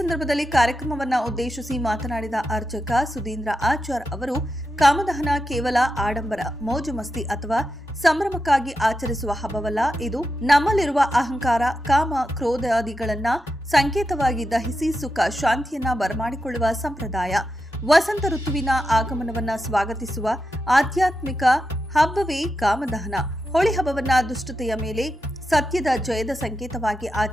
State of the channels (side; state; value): both; normal; correlation 0.88